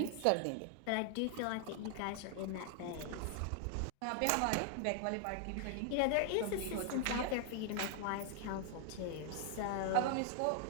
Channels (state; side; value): different; both; correlation 0.00